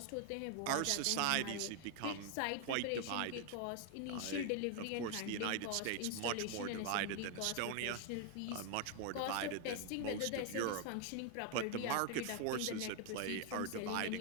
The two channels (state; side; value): different; both; correlation 0.00